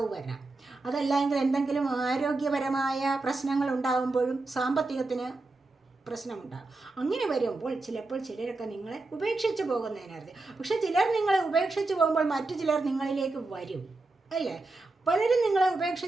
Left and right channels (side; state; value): left; quieter; 3.3 dB